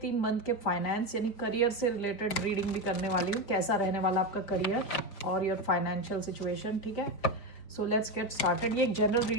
मंथ के फाइनेंस यानी करियर से रिलेटेड रीडिंग भी करने वाली हूँ, कैसा रहने वाला आपका करियर और योर फाइनेंशियल सिचुएशन। ठीक है, सो लेट्स गेट स्टार्टेड। ये एक जनरल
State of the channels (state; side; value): late; right; 5.0 ms